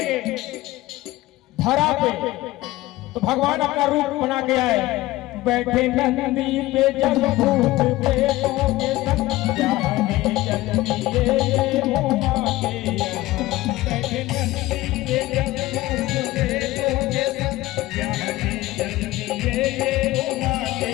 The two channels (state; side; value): quieter; right; 17.8 dB